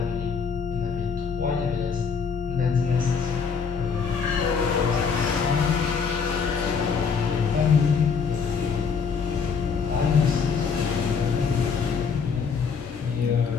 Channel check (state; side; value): quieter; right; 5.8 dB